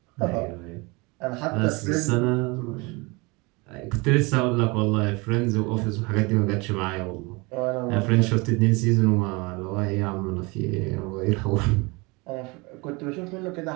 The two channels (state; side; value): quieter; left; 26.4 dB